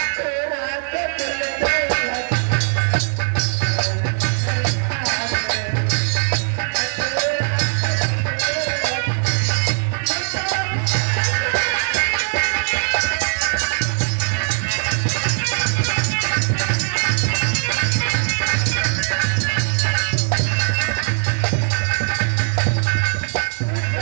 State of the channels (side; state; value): left; silent; digital silence